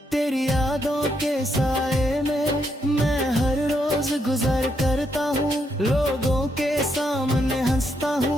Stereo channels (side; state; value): both; normal; correlation 0.78